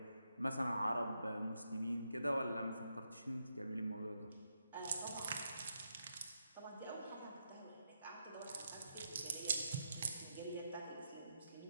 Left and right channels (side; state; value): both; inverted; correlation -0.82